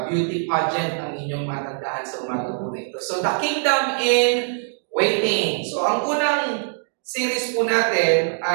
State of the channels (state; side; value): silent; left; digital silence